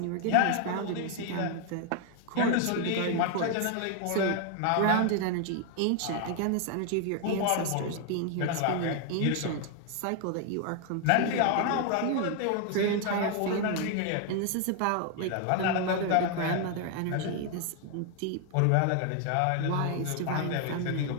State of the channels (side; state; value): both; different; correlation 0.00